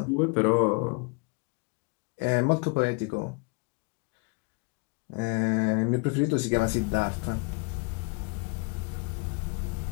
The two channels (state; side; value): quieter; right; 30.9 dB